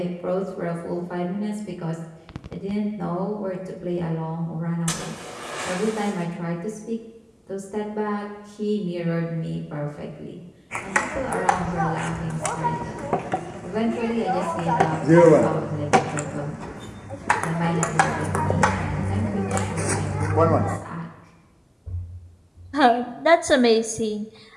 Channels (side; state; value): both; identical; correlation 1.00